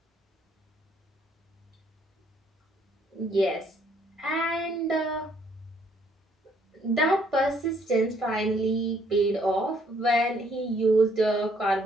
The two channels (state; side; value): normal; both; correlation 0.66